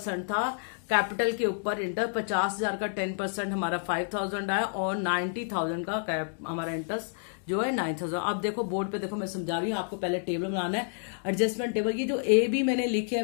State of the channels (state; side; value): silent; right; 58 dB below the other